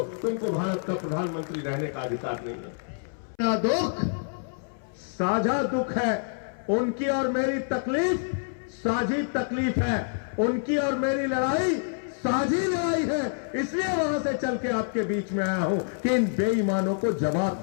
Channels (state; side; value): silent; right; 60 dB below the other